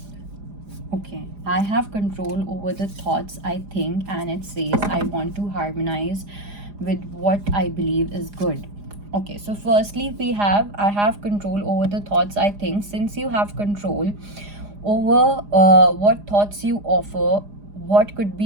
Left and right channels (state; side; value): late; left; 4.9 ms